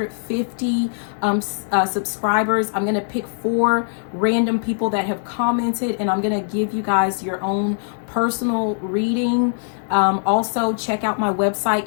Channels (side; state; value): right; silent; digital silence